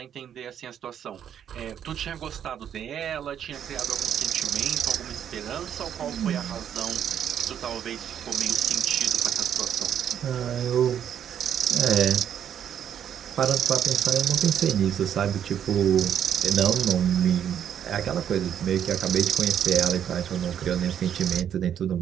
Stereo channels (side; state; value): left; quieter; 9.3 dB